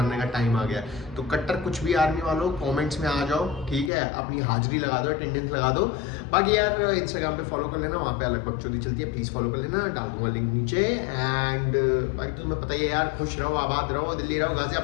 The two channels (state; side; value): drops out; right; at 3.9 s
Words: का टाइम आ गया। तो कट्टर कुछ भी आर्मी वालों कमेंट्स में आ जाओ, ठीक है? अपनी हाजिरी लगा दो, अटेंडेंस लगा दो। बाकी यार इंस्टाग्राम पे फॉलो कर लेना, वहाँ पे अलग बकचोदी चलती है, प्लीज़ फॉलो कर लेना, डाल दूंगा लिंक नीचे। एंड बाकी तो तुम्हें पता ही है यार, खुश रहो, आबाद रहो, दिल्ली रहो,